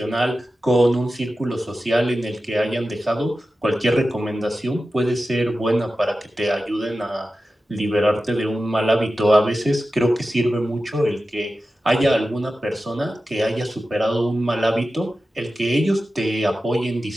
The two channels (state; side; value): normal; both; correlation 0.93